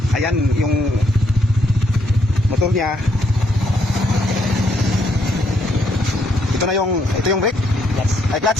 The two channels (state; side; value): normal; both; correlation 0.73